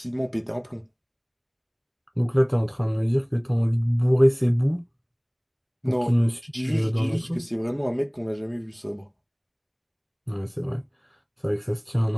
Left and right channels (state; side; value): identical; both; correlation 1.00